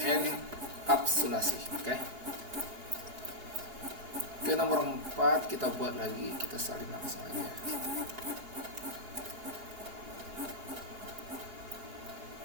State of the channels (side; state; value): left; late; 4.7 ms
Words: enkapsulasi. Oke, nomor 4 kita buat lagi, kita salin langsung aja.